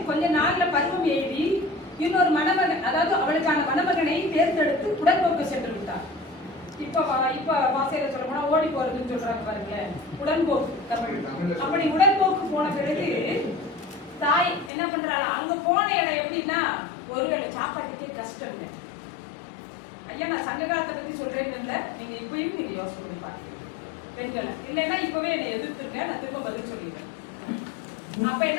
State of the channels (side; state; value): right; drops out; at 14.7 s